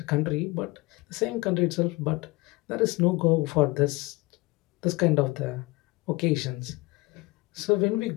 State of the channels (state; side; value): quieter; right; 23.2 dB